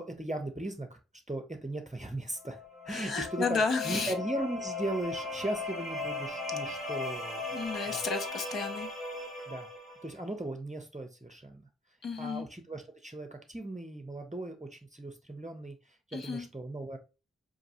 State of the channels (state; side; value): normal; both; correlation 0.64